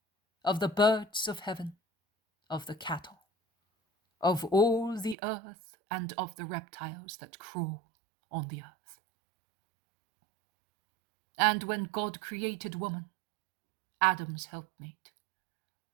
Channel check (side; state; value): left; drops out; at 5.2 s